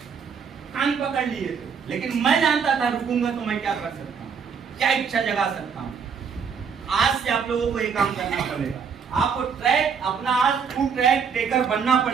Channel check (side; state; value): left; quieter; 6.3 dB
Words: कान पकड़ लिए थे, लेकिन मैं जानता था रुकूंगा तो मैं क्या कर सकता हूँ, क्या इच्छा जगा सकता हूँ। आज से आप लोगों को ये काम करना पड़ेगा। आपको ट्रैक अपना आज ट्रू ट्रैक टेकर बनना